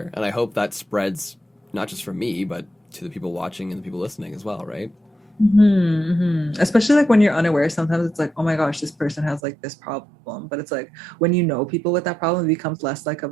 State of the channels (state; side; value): drops out; left; at 9.4 s